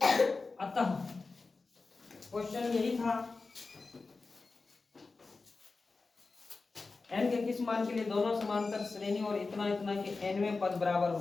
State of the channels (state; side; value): quieter; right; 3.9 dB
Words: अतः क्वेश्चन यही था, n के किस मान के लिए दोनों समांतर श्रेणी और इतना इतना के nवें पद बराबर